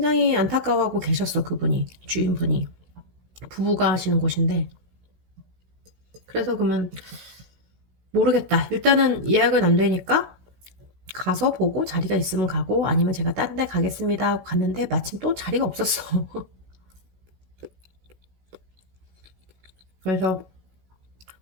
안타까워하고 계셨어, 그분이. 주인분이. 부부가 하시는 곳인데. 그래서 그러면 모르겠다. 일단은 예약은 안 되니까 가서 보고 자리가 있으면 가고 아니면 제가 딴 데 가겠습니다 하고 갔는데 마침 또 자리가 없었어. 그래서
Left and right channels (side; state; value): left; late; 16 ms